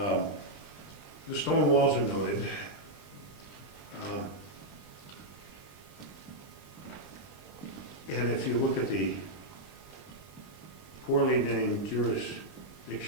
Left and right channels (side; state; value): right; late; 20 ms